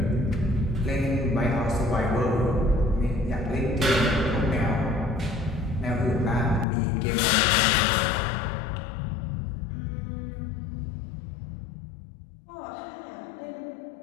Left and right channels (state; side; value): drops out; right; at 6.7 s